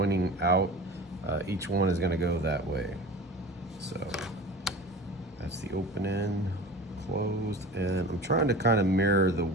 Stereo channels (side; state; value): both; normal; correlation 0.36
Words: out. Each one is gonna go that way. So that's the open end, closed, and I'm trying to kind of mirror the